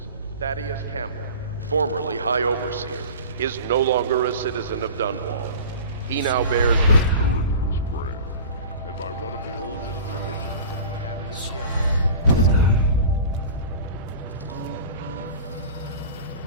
Thaddeus Campbell, formerly High Overseer, is no longer a citizen of Dunwall. He now bears the Durance brand, and by one of the oldest traditions of the Abbey of the Everett.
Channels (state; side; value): inverted; both; correlation -0.37